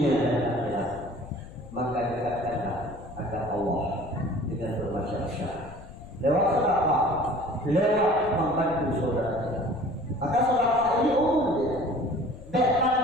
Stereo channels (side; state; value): left; noise; rumble, 16 dB below the sound